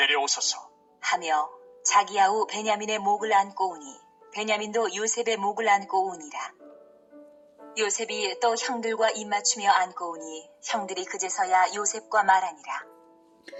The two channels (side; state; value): both; identical; correlation 1.00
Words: 하며 자기 아우 베냐민의 목을 안고 오니 베냐민도 요셉의 목을 안고 오니라. 요셉이 또 형들과 입맞추며 안고 오니 형들이 그제서야 요셉과 말하니라.